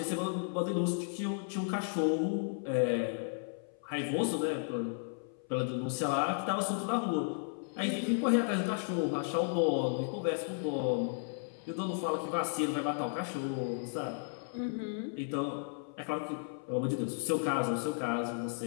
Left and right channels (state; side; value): silent; right; 55 dB below the other